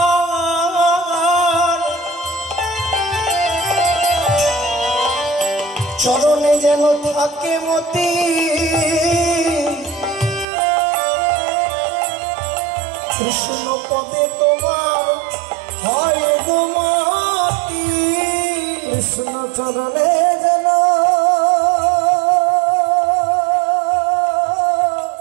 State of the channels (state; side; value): drops out; left; at 10.5 s